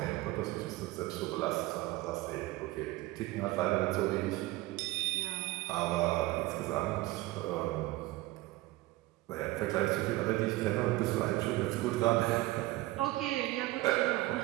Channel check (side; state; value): left; quieter; 18.7 dB